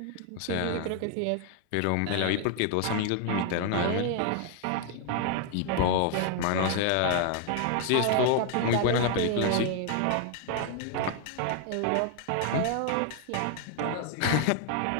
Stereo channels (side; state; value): both; different; correlation 0.00